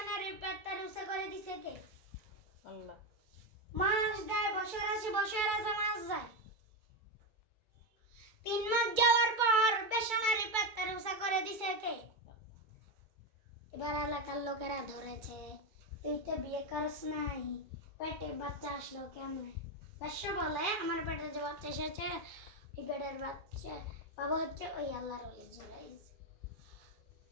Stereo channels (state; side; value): late; left; 2.3 ms